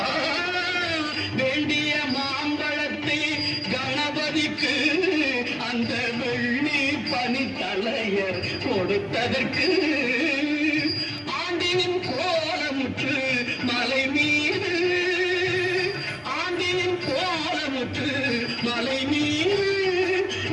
வேண்டிய மாம்பழத்தை கணபதிக்கு அந்த வெள்ளி பனித்தலையர் கொடுத்ததற்கு ஆண்டினின் கோலமுற்று மலை மீது ஆண்டினின் கோலமுற்று மலை மீது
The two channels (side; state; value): both; identical; correlation 1.00